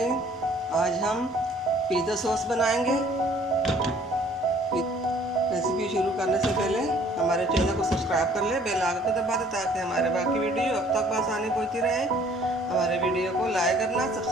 आज हम पिज़्ज़ा सॉस बनाएंगे। रेसिपी शुरू करने से पहले हमारे चैनल को सब्सक्राइब कर ले, बेल आइकन को दबा दे ताकि हमारे बाकी वीडियो अब तक आसानी पहुँचती रहे। हमारे वीडियो को लाइक करना,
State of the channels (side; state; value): both; normal; correlation 0.57